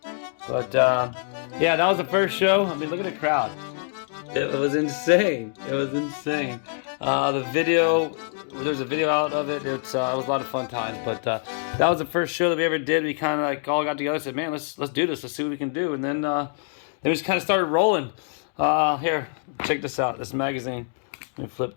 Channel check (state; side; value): silent; right; digital silence